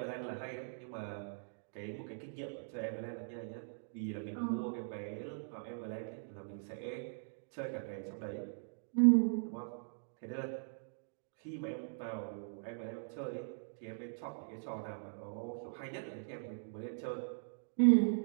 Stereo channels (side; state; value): left; silent; digital silence